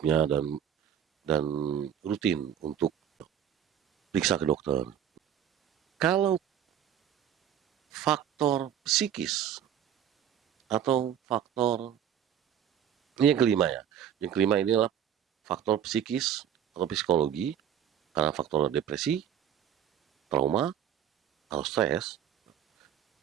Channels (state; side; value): quieter; left; 9.4 dB